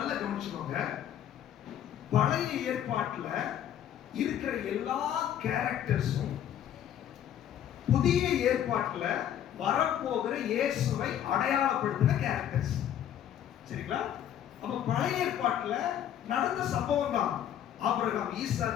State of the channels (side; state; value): right; quieter; 10.4 dB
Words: கவனிச்சுக்கோங்க. பழைய ஏற்பாட்டுல இருக்கிற எல்லா கேரக்டர்ஸும் புதிய ஏற்பாட்டுல வரப்போகிற இயேசுவை அடையாளப்படுத்தின கேரக்டர்ஸ். சரிங்களா? அப்ப பழைய ஏற்பாட்டுல நடந்த சம்பவம் தான். ஆபிரகாம்,